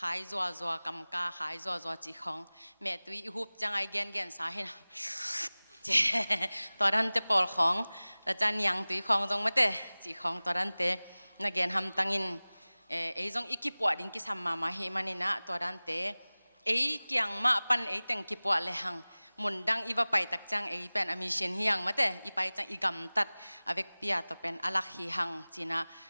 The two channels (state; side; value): inverted; both; correlation -0.99